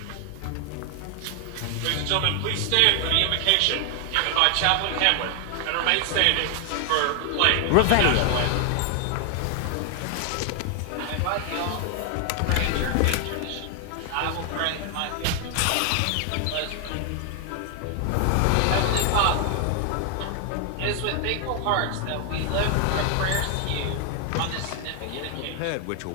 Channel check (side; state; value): both; different; correlation 0.00